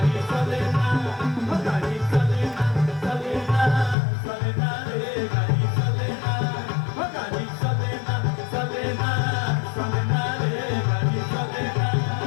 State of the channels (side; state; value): right; drops out; at 4.0 s